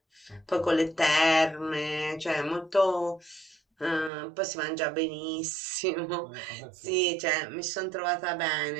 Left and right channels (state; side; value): drops out; left; at 4.1 s